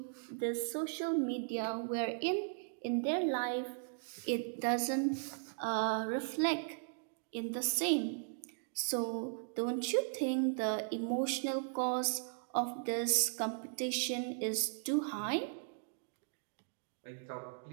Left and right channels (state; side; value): silent; left; digital silence